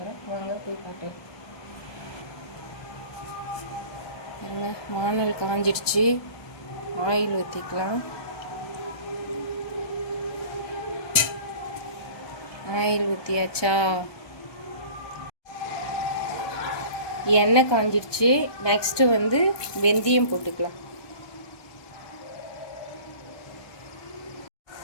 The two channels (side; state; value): right; late; 1.2 ms